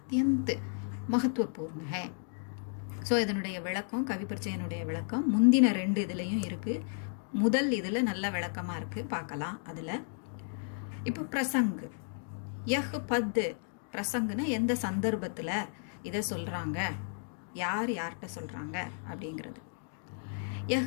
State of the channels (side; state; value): right; silent; digital silence